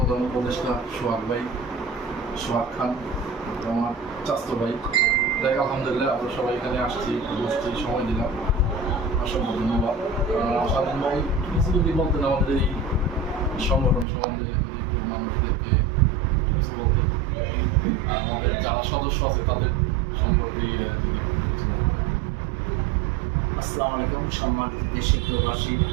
উপদেষ্টা সোহাগ ভাই, সোহাগ খান, আমার চাস্তো ভাই। দেখ আলহামদুলিল্লাহ আমরা সবাই এখানে আসছি, বসছি, সময় দিলাম, অসংখ্য ধন্যবাদ। স্বাধীন ভাই কিছু যদি বলতেন আমাদের এই সংগঠন সম্বন্ধে, মানুষদেরকে কিছু বলতেন, আমাদের যারা সদস্য আছে তাদের সম্পর্কে আসসালামু আলাইকুম। সম্মানিত দেশের প্রবাসী,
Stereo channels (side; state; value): left; drops out; at 14.1 s